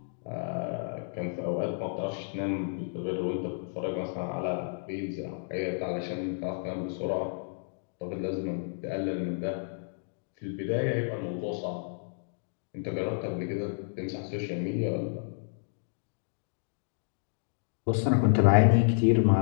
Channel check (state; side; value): silent; right; digital silence